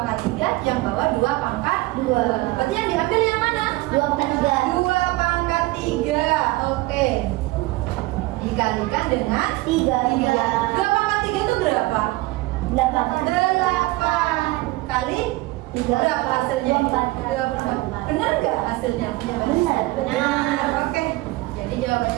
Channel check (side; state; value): left; quieter; 20.2 dB